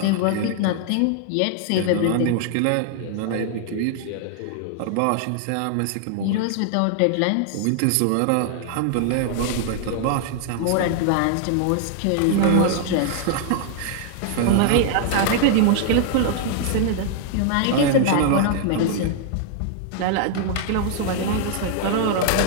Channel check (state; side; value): different; both; correlation -0.01